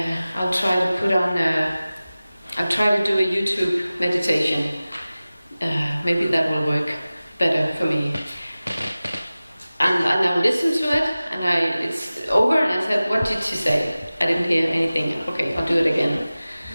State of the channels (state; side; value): inverted; both; correlation -0.97